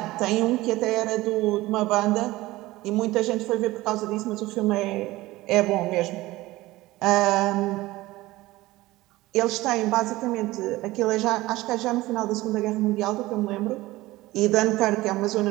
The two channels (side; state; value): left; quieter; 18.5 dB